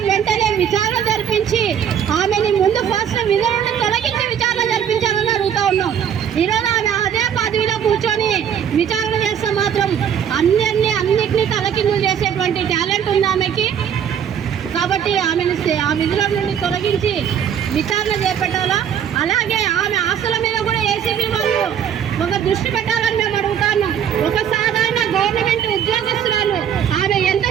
వెంటనే విచారణ జరిపించి ఆమెని ముందు ఫస్ట్ విధుల నుండి తొలగించి విచారణ జరిపించాలని అడుగుతా ఉన్నాం. ఈరోజు ఆమె అదే పదవిలో కూర్చొని విచారణ చేస్తే మాత్రం అన్నిటినీ తలకిందులు చేసేటువంటి టాలెంట్ ఉంది ఆమెకి. కాబట్టి ఆమెను ఆ విధుల నుండి తొలగించి విచారణ చేపట్టాలా. అలాగే ఆమె ఆస్తుల మీద కూడా ఏసీబీ వాళ్ళు ఒక దృష్టి పెట్టాలని మేము అడుగుతున్నాం. ఒక సాధారణ గవర్నమెంట్ ఉద్యోగస్తురాలు ఆమె ఎంత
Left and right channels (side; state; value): left; quieter; 8.7 dB